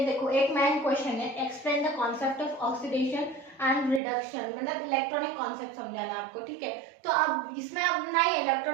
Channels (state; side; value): drops out; left; at 4.0 s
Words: देखो एक मेन क्वेश्चन है, explain the concept of oxidation and reduction, मतलब इलेक्ट्रॉनिक कॉन्सेप्ट समझाना आपको। ठीक है, तो अब इसमें अब ना ही